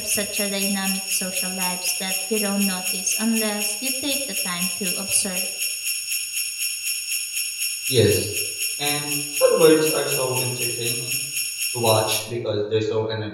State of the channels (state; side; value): identical; both; correlation 1.00